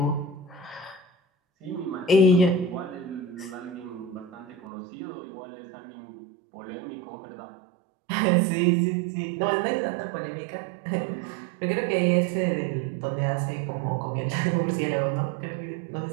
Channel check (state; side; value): drops out; left; at 4.5 s